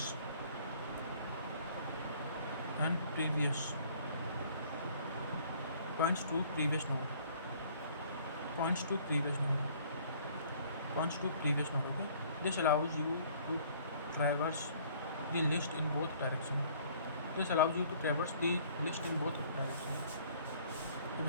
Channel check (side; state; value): both; inverted; correlation -0.57